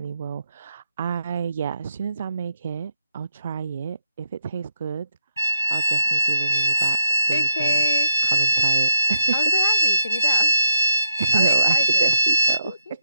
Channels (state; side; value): inverted; both; correlation -0.78